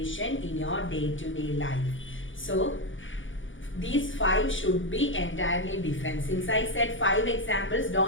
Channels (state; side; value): late; right; 0.56 ms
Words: in your day-to-day life. So these 5 should be entirely different. Since I said 5 examples,